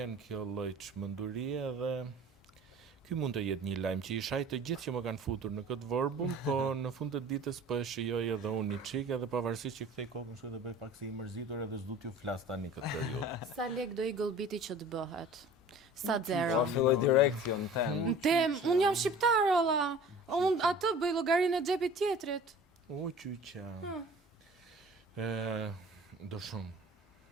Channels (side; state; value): both; normal; correlation 0.44